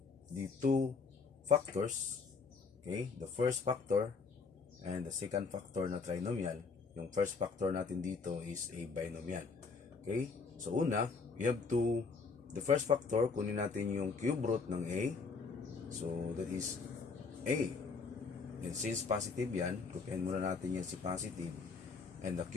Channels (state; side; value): quieter; right; 4.8 dB